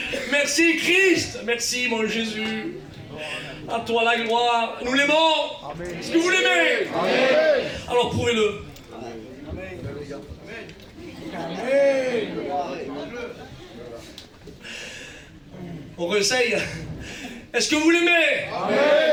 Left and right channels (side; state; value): both; identical; correlation 1.00